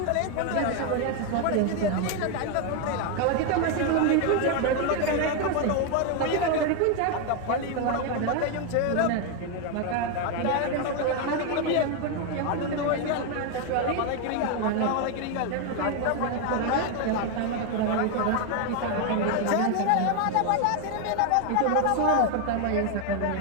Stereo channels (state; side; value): different; both; correlation 0.01